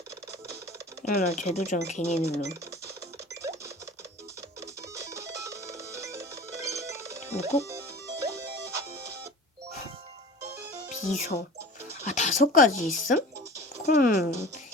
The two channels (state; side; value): normal; both; correlation 0.39